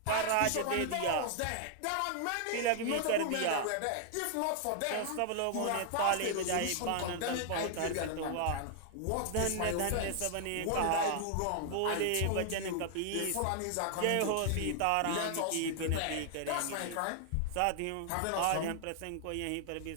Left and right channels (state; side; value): different; both; correlation 0.00